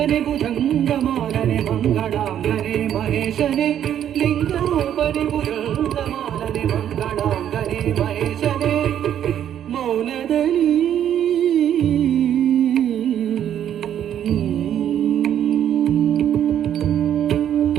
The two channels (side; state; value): left; quieter; 10.2 dB